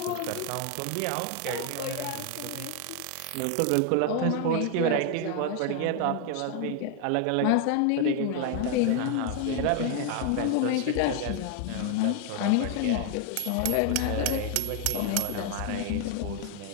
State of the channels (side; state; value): both; different; correlation 0.01